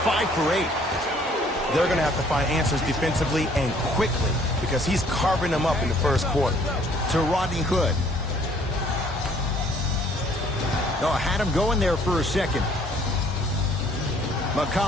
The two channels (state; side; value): normal; both; correlation 0.60